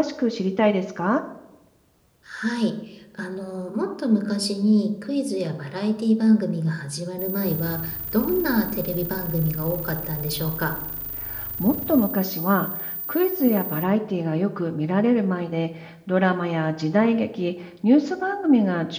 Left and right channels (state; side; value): identical; both; correlation 1.00